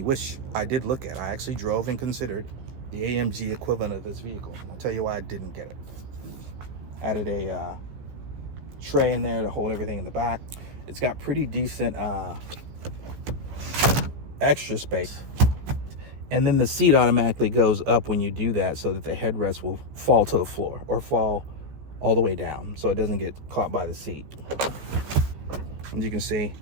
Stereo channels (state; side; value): late; left; 15 ms